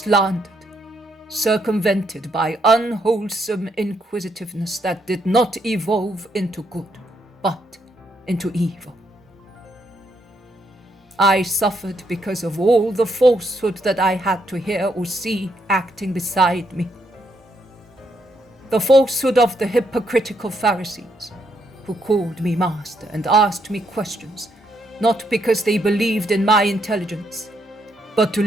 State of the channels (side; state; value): both; normal; correlation 0.76